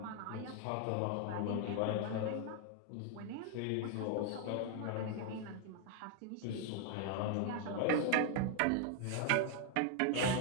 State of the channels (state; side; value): different; both; correlation 0.00